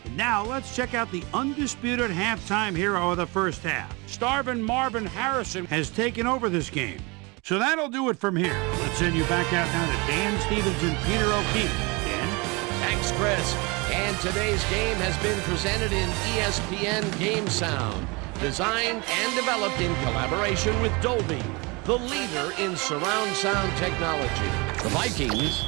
Now let's check out the undisputed halftime hero of the first half. Starvin' Marvin Harrison has taken over this game. So that'll do it from here. Let's send you back out now to Dan Stevens and Peter O'Keefe. Dan? Thanks, Chris. And today's game has been presented in ESPN Game Sound, designed and developed in collaboration with Dolby, the leader in surround sound technology. The Vikings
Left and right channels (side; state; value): left; quieter; 27.2 dB